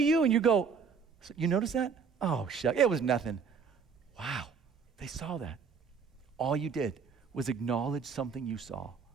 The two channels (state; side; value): quieter; left; 5.9 dB